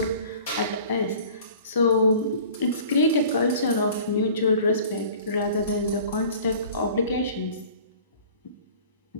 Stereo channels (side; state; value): both; inverted; correlation -0.47